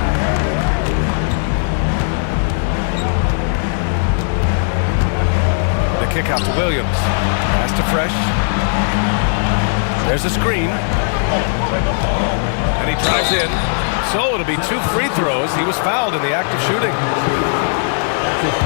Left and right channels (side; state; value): right; silent; digital silence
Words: The kick out to Williams. Pass to Fresh. There's a screen. And he drives in. So it'll be 2 free throws. He was fouled in the act of shooting. That's his